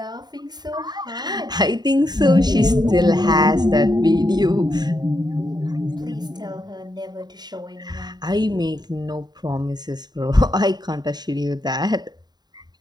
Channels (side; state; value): left; late; 0.20 ms